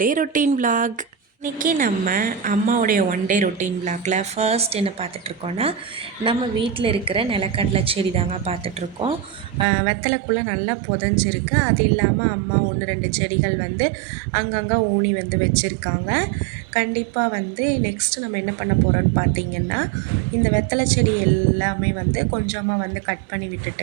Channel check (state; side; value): drops out; left; at 9.7 s